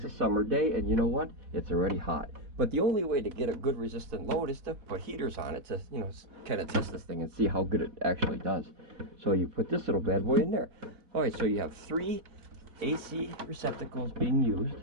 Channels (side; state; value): left; late; 4.1 ms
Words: a summer day, and you know what? It's already hot. But the only way to get a good resistant load is to put heaters on it to, you know, kind of test this thing and see how good it actually does. So you put this little bad boy in there. All right, so you have 3 AC receptacles being used.